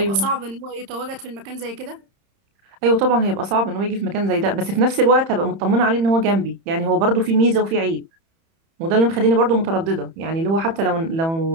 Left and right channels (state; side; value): late; left; 30 ms